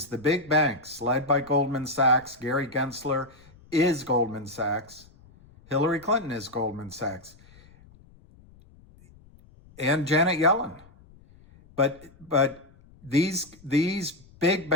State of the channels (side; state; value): left; noise; rumble, 26 dB below the sound